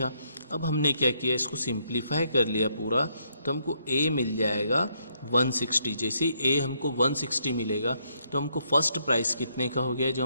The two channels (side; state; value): both; inverted; correlation -0.74